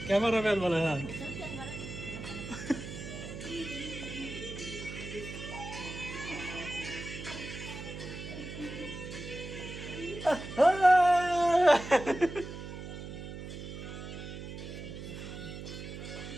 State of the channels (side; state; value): right; noise; hum, 9 dB below the sound